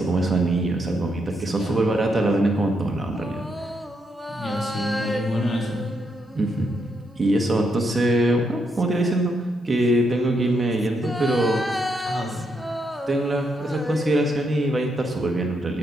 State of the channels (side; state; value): both; normal; correlation 0.79